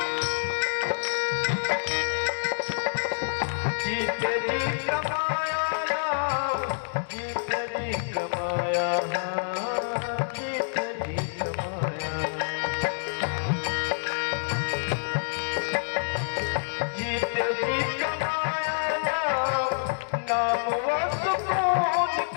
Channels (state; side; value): silent; right; digital silence